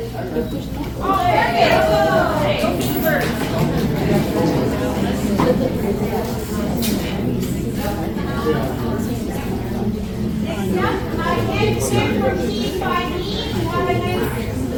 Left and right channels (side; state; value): both; identical; correlation 1.00